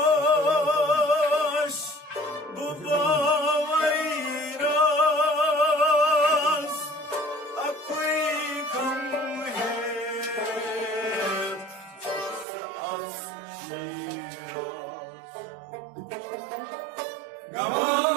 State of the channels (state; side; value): drops out; left; at 12.5 s